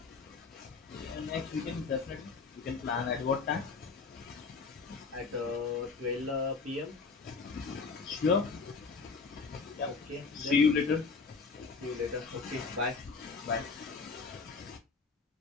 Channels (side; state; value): right; quieter; 4.7 dB